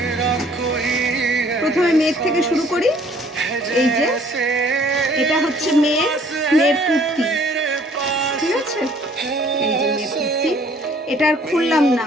প্রথমে মেয়ের থেকে শুরু করি। এই যে এটা হচ্ছে মেয়ের কুর্তি, ঠিক আছে? এই যে মেয়ের কুর্তি, এটা আর খুললাম না,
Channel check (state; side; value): normal; both; correlation 0.58